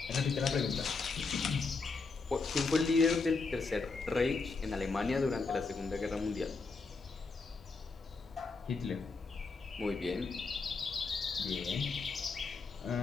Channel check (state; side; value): quieter; right; 4.2 dB